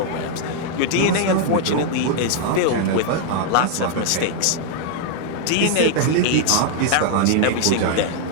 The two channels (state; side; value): different; both; correlation 0.00